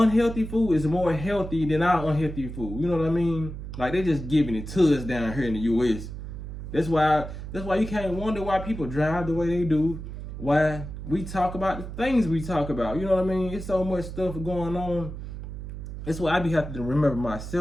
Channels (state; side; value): noise; right; hum, 9 dB below the sound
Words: food is more healthy than our unhealthy food. You know what I mean? Like they just giving it to us down here in the US. That's why you can't wonder why people drive the way they do. Why we talk about the things we talk about. You know what I mean? It's so much stuff going on. That's why I be having to remember